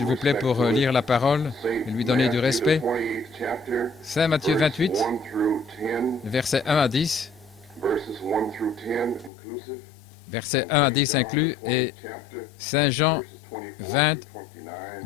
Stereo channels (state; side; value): drops out; right; at 9.3 s